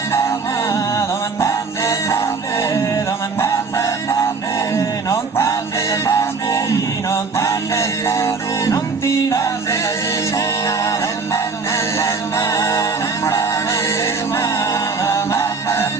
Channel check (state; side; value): quieter; left; 4.5 dB